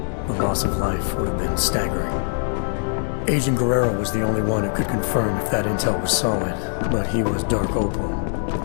the loss of life would have been staggering. Agent Guerrero was the only one who could confirm if that intel was solid, but he was Dark Opal,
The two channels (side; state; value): right; silent; digital silence